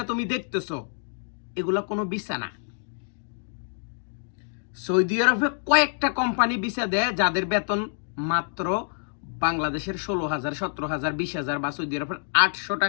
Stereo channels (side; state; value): right; silent; digital silence